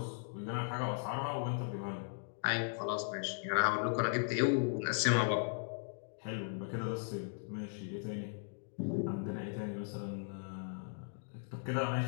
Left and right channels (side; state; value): right; silent; digital silence